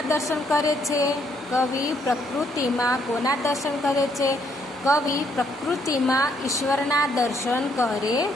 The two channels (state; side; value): normal; both; correlation 0.71